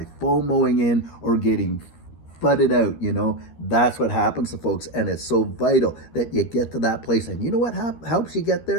FOMOing in or getting FUDded out. That's what happens to folks, and it's so vital that you get to that place. And you know what helps you get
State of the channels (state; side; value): late; right; 13 ms